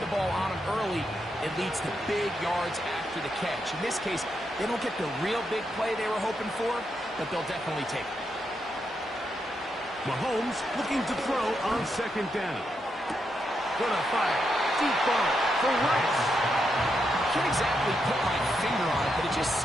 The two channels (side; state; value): both; normal; correlation 0.82